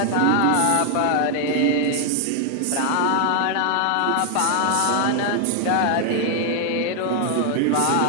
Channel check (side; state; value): both; different; correlation 0.00